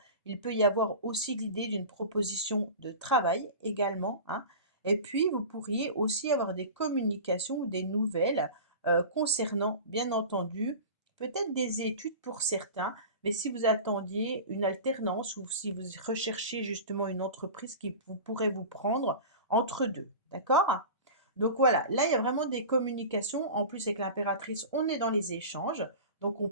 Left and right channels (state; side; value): inverted; both; correlation -0.33